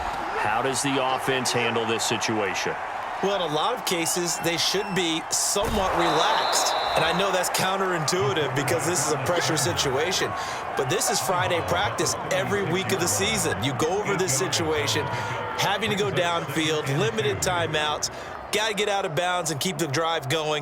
does the offense handle this situation? Well, in a lot of cases, they should be somewhat relaxed. And I know that's counterintuitive because this is a pressure situation. But this is Friday practice every week of the season. You go over this situation, having to go downfield, limited timeouts, got to get out of bounds and keep the drive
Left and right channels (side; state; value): both; identical; correlation 1.00